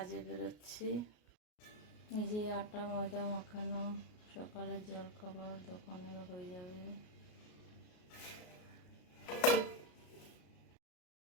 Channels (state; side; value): late; right; 33 ms